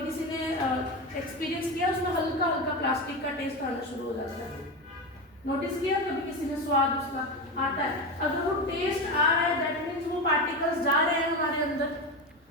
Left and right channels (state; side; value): normal; both; correlation 0.19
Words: किसी ने एक्सपीरियंस किया उसमें हल्का हल्का प्लास्टिक का टेस्ट आना शुरू हो जाता है, नोटिस किया कभी किसी ने? स्वाद उसका आता है। अगर वो टेस्ट आ रहा है दैट मीन्स वो पार्टिकल्स जा रहे हैं हमारे अंदर।